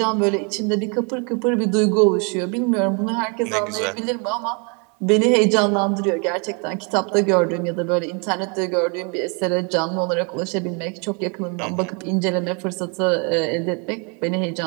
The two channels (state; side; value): quieter; left; 35.2 dB